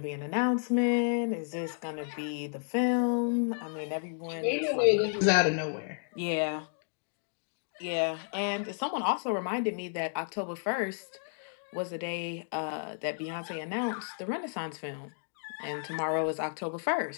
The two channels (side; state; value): right; silent; digital silence